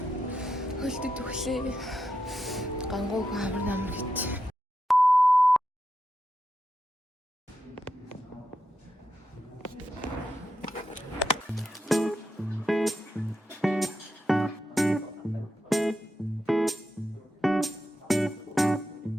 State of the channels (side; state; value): both; normal; correlation 0.86